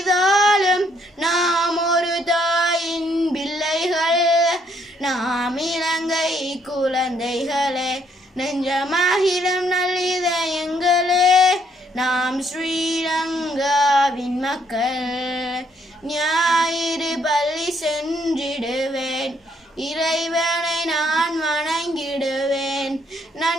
நாம் ஒரு தாயின் பிள்ளைகள். நாம் இலங்கை குழந்தைகளே, நெஞ்சமாகிலும் நல்லிதயங்களே. நாம் ஸ்ரீலங்காவின் மக்கள். ஞாயிறு பள்ளி சென்றிடுவேன், இறைவனை நான் வணங்கிடுவேன்.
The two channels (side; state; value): both; normal; correlation 0.69